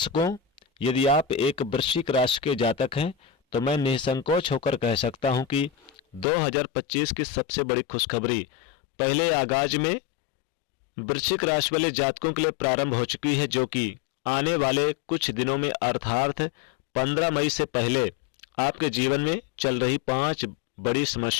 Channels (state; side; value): drops out; right; at 6.2 s